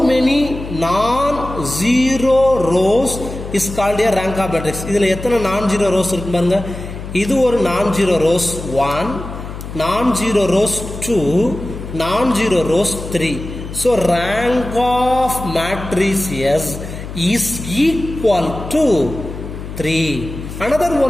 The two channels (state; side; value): noise; left; hum, 10 dB below the sound